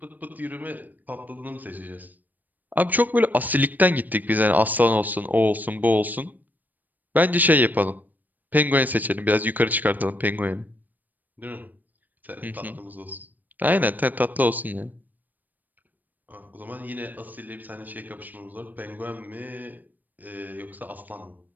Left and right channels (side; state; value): left; late; 0.084 ms